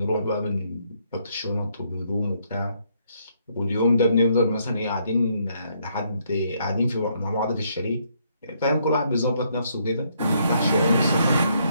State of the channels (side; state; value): both; inverted; correlation -0.72